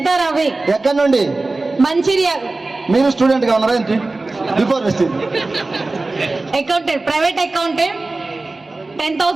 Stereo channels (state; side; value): quieter; left; 3.3 dB